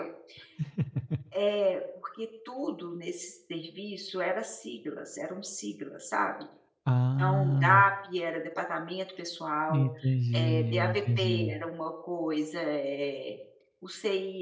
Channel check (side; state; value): both; identical; correlation 1.00